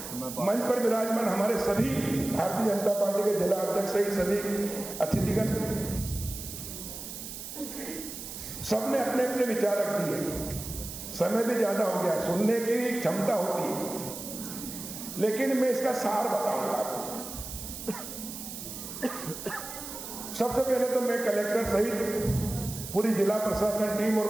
मंच पर विराजमान हमारे सभी भारतीय जनता पार्टी के जिला अध्यक्ष सहित सभी अतिथिगण, सबने अपने अपने विचार रख दिए। समय भी ज्यादा हो गया, सुनने की भी क्षमता होती है, लेकिन मैं इसका सार बताऊंगा आपको। सबसे पहले तो मैं कलेक्टर सहित पूरी जिला प्रशासन टीम और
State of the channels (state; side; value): noise; right; hiss, 9 dB below the sound